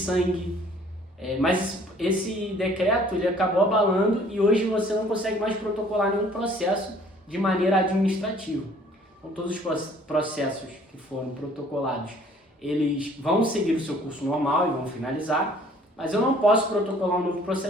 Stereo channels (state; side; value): normal; both; correlation 0.56